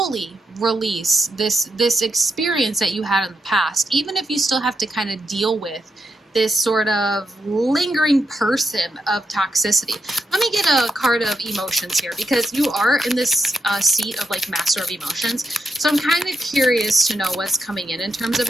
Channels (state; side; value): normal; both; correlation 0.83